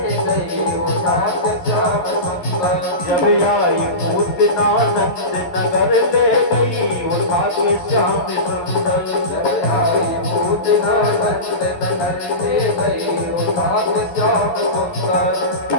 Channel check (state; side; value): late; right; 11 ms